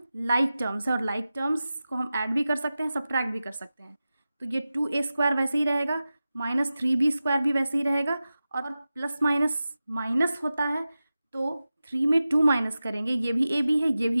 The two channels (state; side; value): inverted; both; correlation -0.94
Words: लाइक टर्म्स है और लाइक टर्म्स को हम ऐड भी कर सकते हैं, सब्ट्रैक्ट भी कर सकते हैं. तो ये 2a स्क्वायर वैसे ही रहेगा, माइनस 3b स्क्वायर भी वैसे ही रहेगा, और प्लस माइनस माइनस होता है तो 3 में 2 माइनस करेंगे, ये भी ab है ये भी